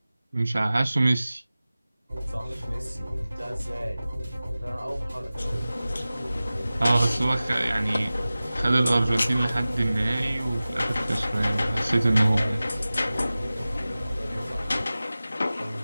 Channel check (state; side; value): inverted; both; correlation -0.97